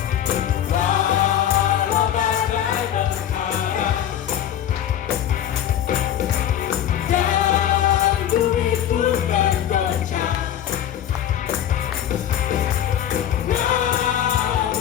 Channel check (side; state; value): right; quieter; 10.5 dB